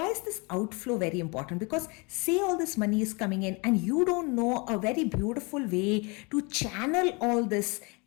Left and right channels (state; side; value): quieter; right; 29.6 dB